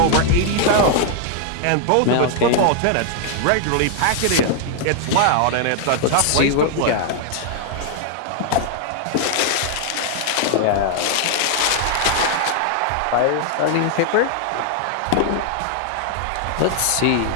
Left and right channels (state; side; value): different; both; correlation 0.00